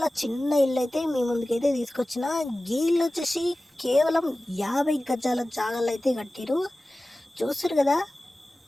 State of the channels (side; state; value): both; normal; correlation 0.96